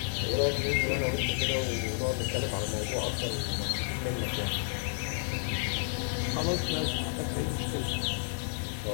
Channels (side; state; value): right; silent; digital silence